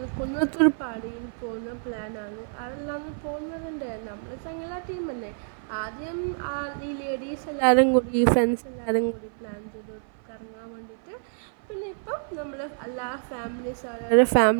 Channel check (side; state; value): left; silent; 56 dB below the other